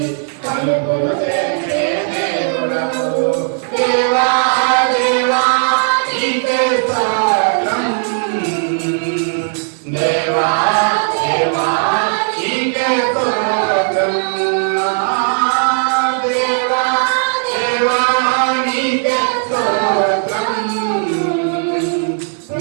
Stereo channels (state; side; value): silent; left; 67 dB below the other